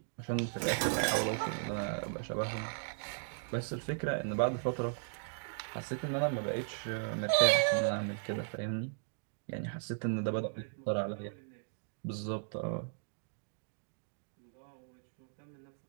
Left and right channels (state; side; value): silent; left; digital silence